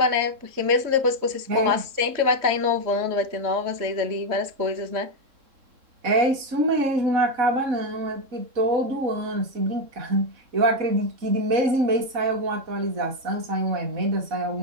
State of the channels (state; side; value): late; left; 3.7 ms